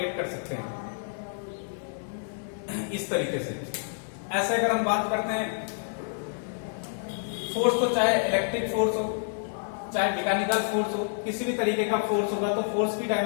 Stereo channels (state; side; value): silent; right; digital silence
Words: कर सकते हैं इस तरीके से। ऐसे अगर हम बात करते हैं फोर्स, तो चाहे इलेक्ट्रिक फोर्स हो चाहे मैकेनिकल फोर्स हो, किसी भी तरीके का फोर्स होगा तो फोर्स की